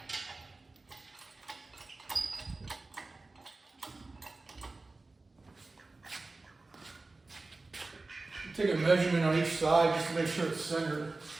Take a measurement on each side just to make sure it's centered.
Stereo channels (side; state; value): left; quieter; 3.4 dB